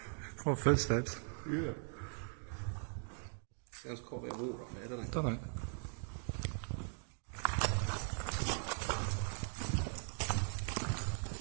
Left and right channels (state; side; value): silent; left; 51 dB below the other